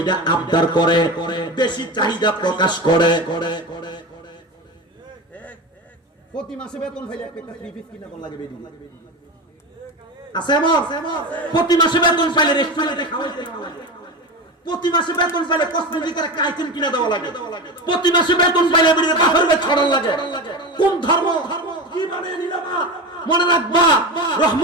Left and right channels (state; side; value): normal; both; correlation 0.23